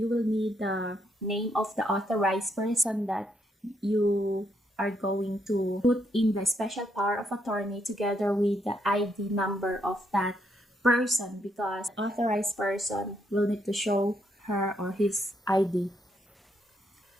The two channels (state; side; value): normal; both; correlation 0.75